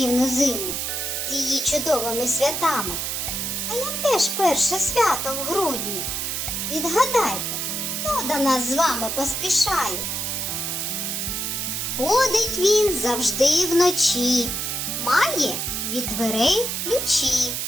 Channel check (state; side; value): noise; right; hiss, 2 dB below the sound